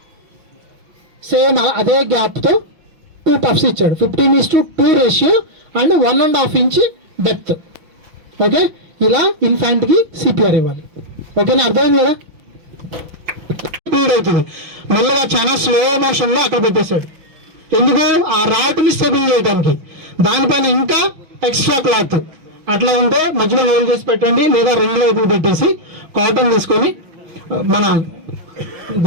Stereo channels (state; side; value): late; left; 5.9 ms